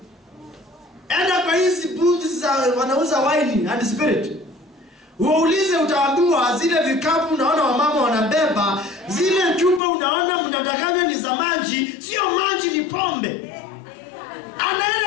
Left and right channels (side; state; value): right; drops out; at 9.8 s